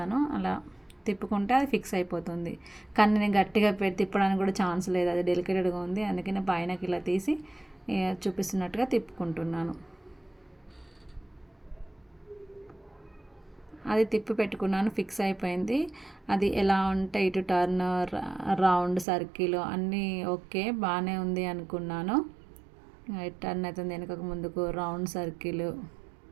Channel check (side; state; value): left; drops out; at 19.1 s